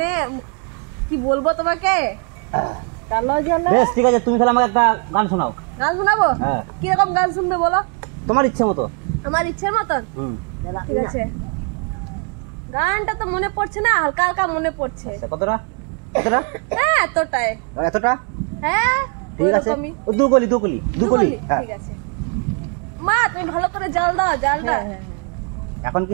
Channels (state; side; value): quieter; left; 37.2 dB